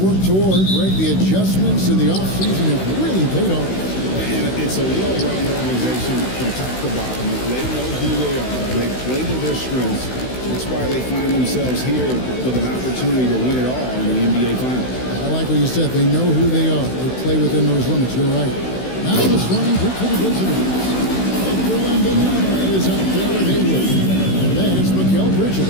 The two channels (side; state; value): right; late; 16 ms